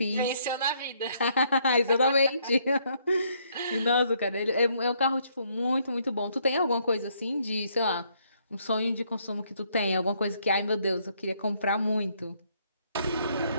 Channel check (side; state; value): both; inverted; correlation -0.69